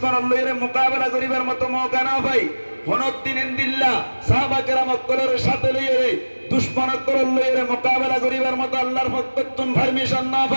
লইরে মোকাবেলা করিবার মতো মৌকা না পাই, অনেকদিন ইনদিল্লাহ সাহাবা কেরাম অক্কলের সাথে লইরে দুশ্মনের লইরে মোকাবেলা করিবার মতো আল্লাহর পক্ষ পারমিশন না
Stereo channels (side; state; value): both; inverted; correlation -1.00